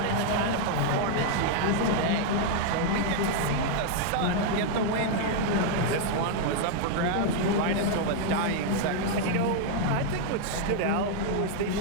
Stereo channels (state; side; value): different; both; correlation 0.00